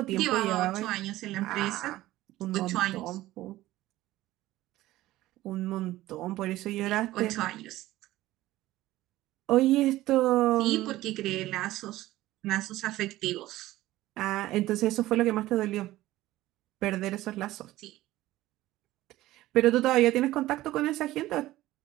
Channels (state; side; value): quieter; left; 16.2 dB